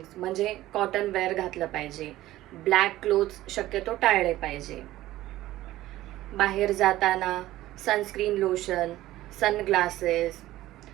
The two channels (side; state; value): left; quieter; 15.6 dB